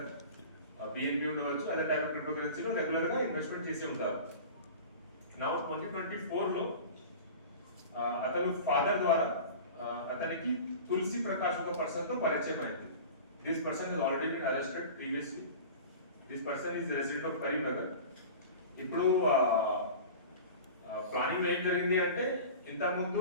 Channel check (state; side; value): inverted; both; correlation -0.36